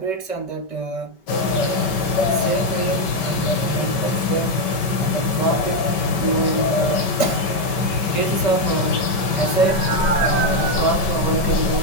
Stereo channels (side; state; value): right; late; 5.2 ms